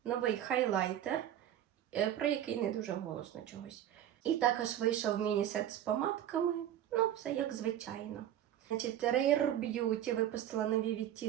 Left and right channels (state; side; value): quieter; left; 11.4 dB